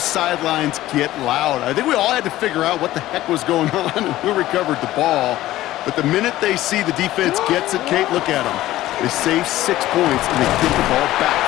sidelines get loud. I think we all had to figure out what the heck was going on and who recovered the ball. But the minute they see the defense gets it, Kate, look at them. They save 6 points, and they get the ball back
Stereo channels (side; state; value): right; quieter; 15.3 dB